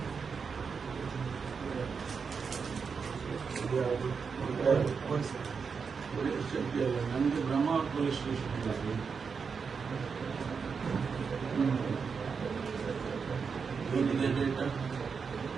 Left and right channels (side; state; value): left; quieter; 5.7 dB